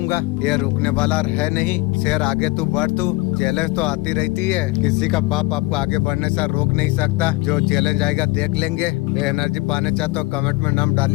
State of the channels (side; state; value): right; quieter; 21.9 dB